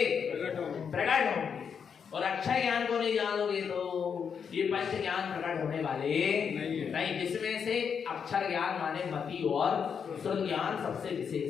प्रकट होंगे। और अक्षय ज्ञान को नहीं जानोगे तो ये पंच ज्ञान प्रकट होने वाले नहीं। जिसमें से अक्षर ज्ञान माने मति और श्रुत ज्ञान सबसे विशेष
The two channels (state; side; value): quieter; right; 6.8 dB